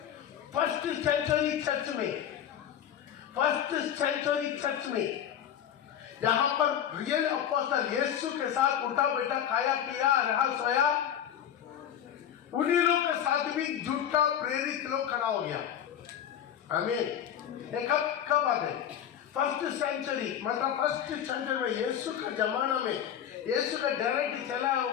फर्स्ट सेंचुरी चर्च में जहां पर रियल अपोस्टल यीशु के साथ उठा बैठा, खाया पिया, रहा सोया, उन्हीं लोग के साथ भी झूठा प्रेरित लोग खड़ा हो गया। आमीन। कब बात है? फर्स्ट सेंचुरी, मतलब फर्स्ट सेंचुरी में, यीशु के जमाना में, यीशु का डायरेक्ट चला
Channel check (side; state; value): right; quieter; 9.7 dB